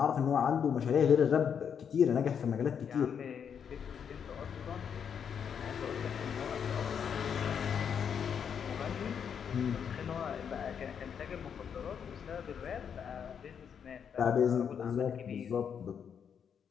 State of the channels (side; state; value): right; quieter; 7.5 dB